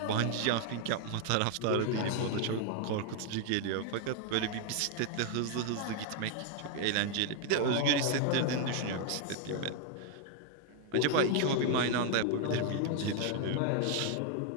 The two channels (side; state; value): both; different; correlation 0.00